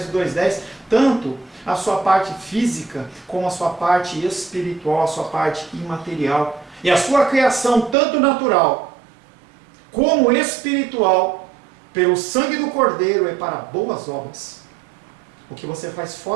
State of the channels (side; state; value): left; drops out; at 8.0 s